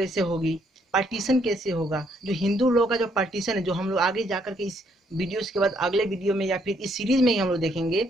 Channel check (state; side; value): normal; both; correlation 0.70